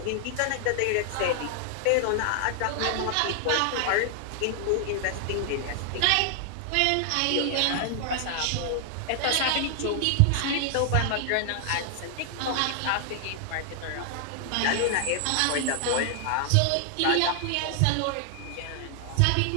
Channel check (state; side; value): different; both; correlation 0.00